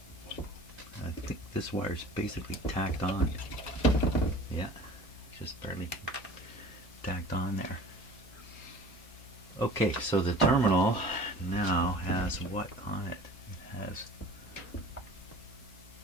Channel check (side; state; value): both; normal; correlation 0.43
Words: This wire's basically tacked on. Yeah, just barely tacked on there. Okay, so the terminal now has what on it? It has